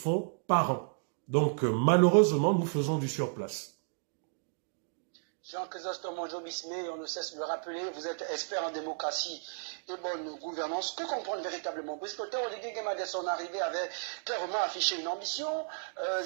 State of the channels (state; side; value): silent; left; digital silence